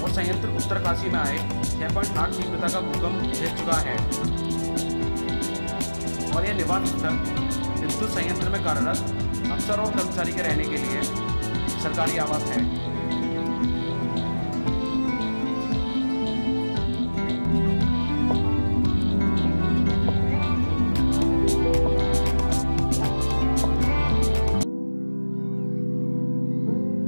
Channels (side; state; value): both; inverted; correlation -1.00